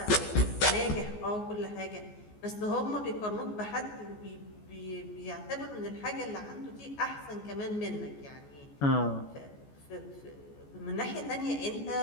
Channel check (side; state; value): right; late; 14 ms